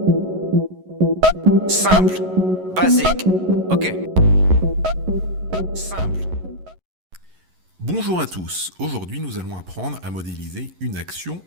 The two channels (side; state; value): left; late; 11 ms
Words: Simple, basique. Ok. Simple. Bonjour à tous, aujourd'hui nous allons apprendre à modéliser une action